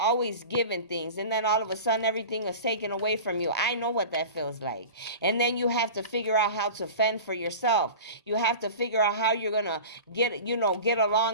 given things. And then all of a sudden everything is taken away from you. I know what that feels like. And then you have to figure out how to fend for yourself. You have to figure out how you're going to get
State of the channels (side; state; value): both; inverted; correlation -0.34